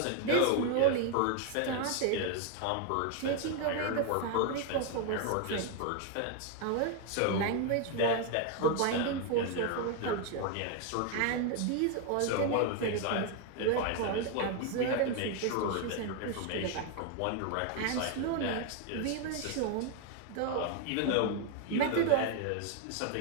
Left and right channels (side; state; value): both; different; correlation 0.01